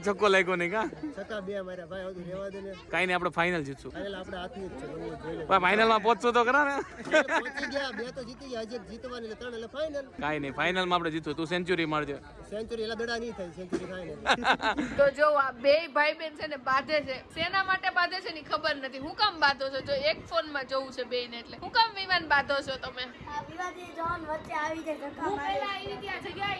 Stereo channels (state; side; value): identical; both; correlation 1.00